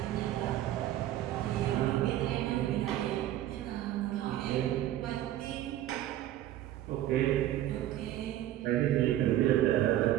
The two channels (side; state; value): left; quieter; 13.2 dB